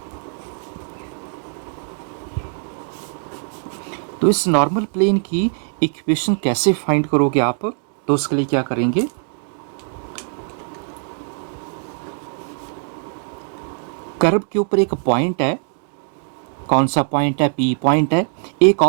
तो इस नॉर्मल प्लेन की इक्वेशन कैसे फाइंड करोगे आप, तो उसके लिए क्या करेंगे, कर्व के ऊपर एक पॉइंट है, कौन सा पॉइंट है, पी पॉइंट है। एक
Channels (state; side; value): silent; left; 58 dB below the other